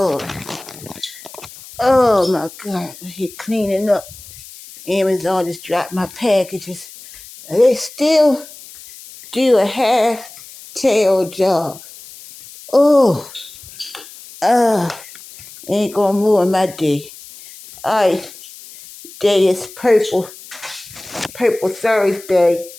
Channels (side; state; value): left; noise; hiss, 18 dB below the sound